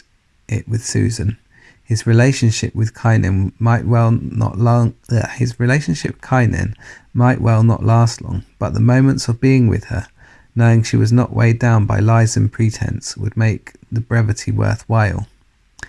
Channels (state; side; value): identical; both; correlation 1.00